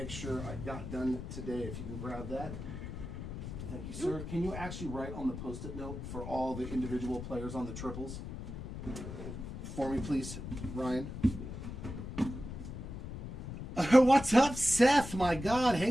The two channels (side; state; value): left; noise; rumble, 8 dB below the sound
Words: sure I got done today. If you can grab that. Thank you, sir. Can you actually write on the Post-it note for all the individual players on the triples? For me, please, Ryan. What's up, Seth? My God,